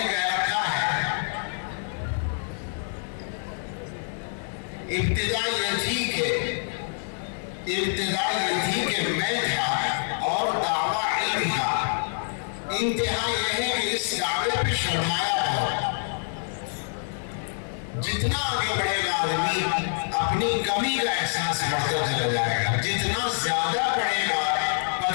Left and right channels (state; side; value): silent; right; 61 dB below the other